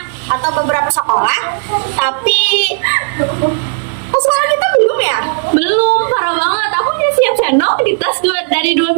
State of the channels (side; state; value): left; silent; digital silence